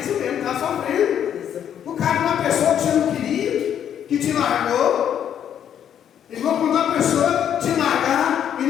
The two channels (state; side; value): quieter; right; 9.4 dB